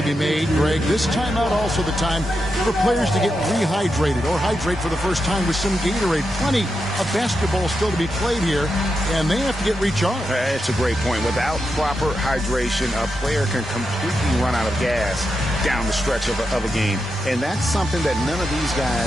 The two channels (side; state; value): both; normal; correlation 0.87